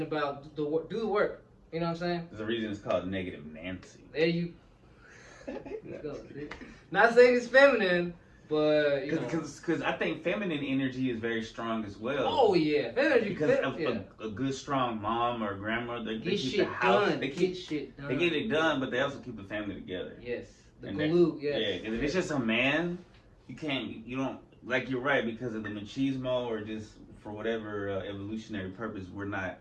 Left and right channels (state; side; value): identical; both; correlation 1.00